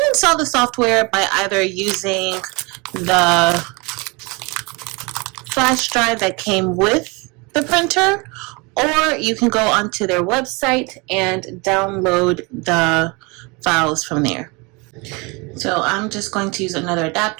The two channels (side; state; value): left; quieter; 27.9 dB